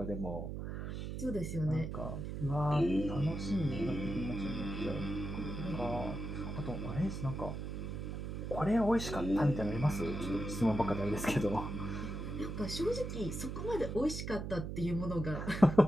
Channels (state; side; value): noise; right; hum, 5 dB below the sound